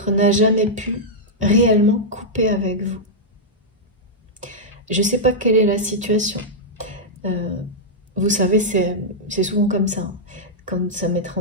n'a jamais pu réellement couper avec vous. Je ne sais pas quelle est la situation. Vous savez, c'est souvent comme ça. Quand ça m'est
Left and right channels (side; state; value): both; normal; correlation -0.07